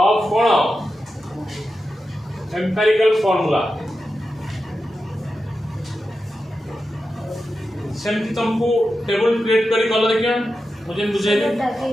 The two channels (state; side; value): normal; both; correlation 0.90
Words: of cone empirical formula सेमती तुमको टेबल क्रिएट करी कलो देखियो मुझे बुझाई दे